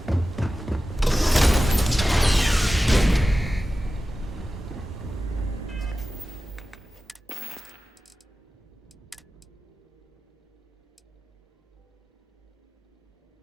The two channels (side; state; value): both; normal; correlation 0.94